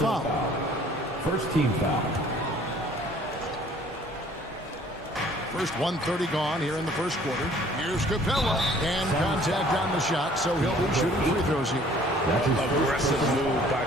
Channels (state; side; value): normal; both; correlation 0.55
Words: First team foul. First 1:30 gone here in the first quarter. Here's Capella. And contact on the shot, so he'll be shooting free throws here. Aggressive move by